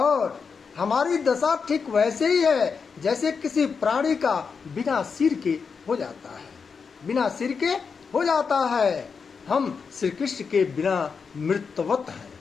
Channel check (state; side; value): quieter; right; 5.6 dB